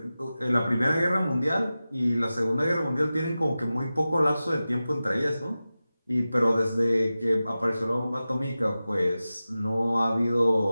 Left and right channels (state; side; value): inverted; both; correlation -0.95